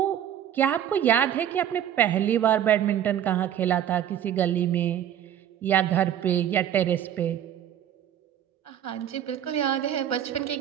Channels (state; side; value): quieter; left; 10.4 dB